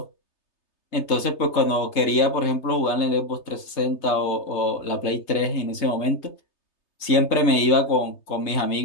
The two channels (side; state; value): right; late; 3.3 ms